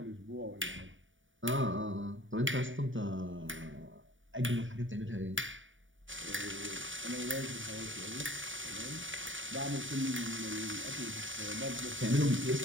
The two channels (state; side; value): late; left; 0.56 ms